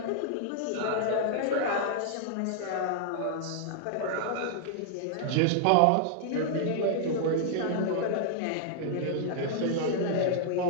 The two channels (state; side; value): different; both; correlation -0.01